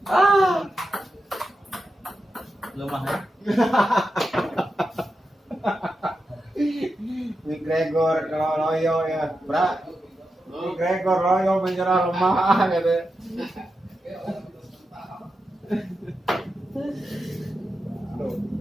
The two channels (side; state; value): both; normal; correlation 0.89